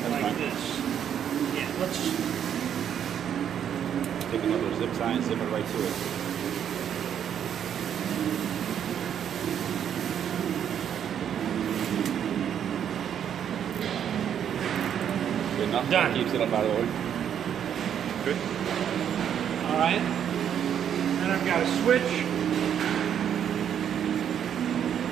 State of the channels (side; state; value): left; quieter; 9.0 dB